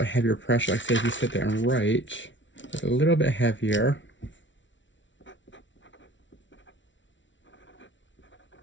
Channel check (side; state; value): right; late; 0.55 ms